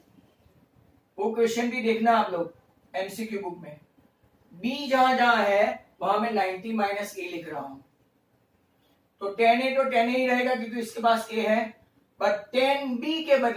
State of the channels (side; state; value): both; identical; correlation 1.00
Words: वो क्वेश्चन भी देखना आप लोग एमसीक्यू बुक में. बी जहां जहां है वहां मैं 90 माइनस ए लिख रहा हूं. तो tan a तो tan a ही रहेगा क्योंकि इसके पास a है. बट tan b